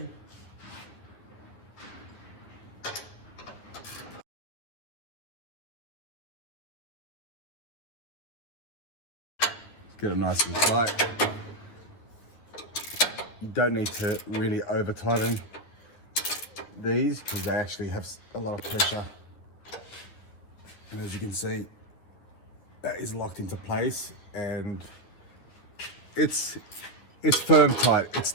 Get it nice and tight. You don't need to really over tighten these because they actually have a lot of pressure. And as you can see, that is locked into place and it's firm tight. It's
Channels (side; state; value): right; late; 10 ms